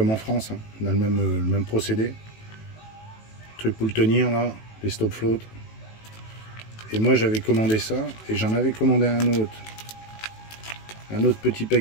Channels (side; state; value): right; late; 18 ms